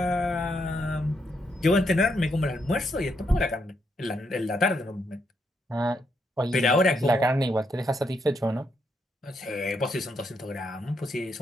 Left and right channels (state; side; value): normal; both; correlation 0.78